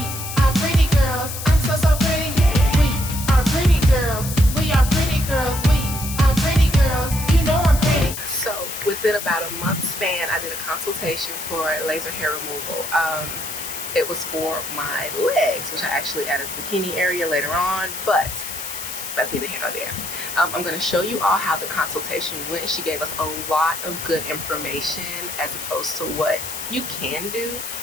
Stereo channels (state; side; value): noise; left; hiss, 7 dB below the sound